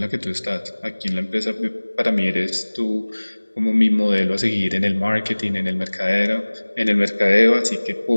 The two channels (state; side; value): inverted; both; correlation -1.00